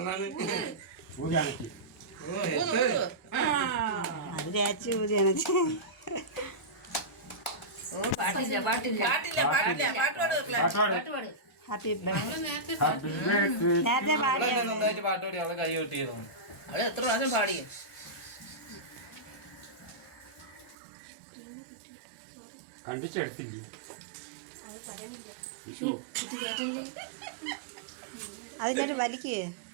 അത് ചേച്ചി ഊതിയാണ് ഹാപ്പി നേരത്തെ പാടി അവളെ കൈ കൊട്ടിയിരുന്നു അവളെ എത്ര പ്രാവശ്യം പാടി കണ്ടിച്ചെടുത്തില്ലേ അത് ഞാൻ വലിക്ക്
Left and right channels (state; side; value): drops out; left; at 20.8 s